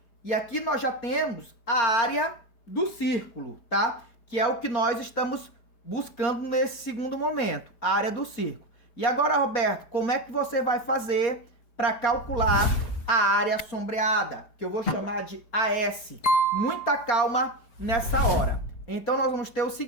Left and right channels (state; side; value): late; right; 4.3 ms